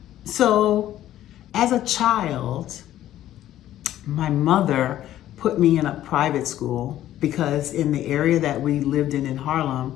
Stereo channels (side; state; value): right; quieter; 12.9 dB